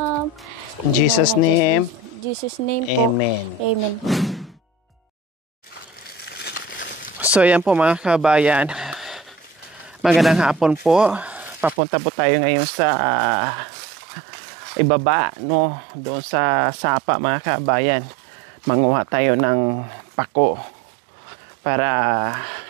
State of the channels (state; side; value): drops out; left; at 11.8 s